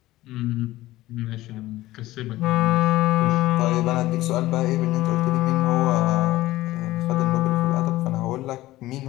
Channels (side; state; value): right; quieter; 16.8 dB